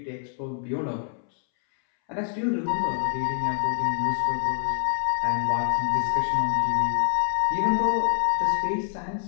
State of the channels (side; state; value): right; silent; 61 dB below the other